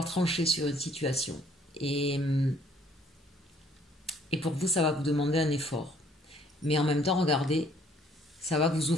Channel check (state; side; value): normal; both; correlation 0.61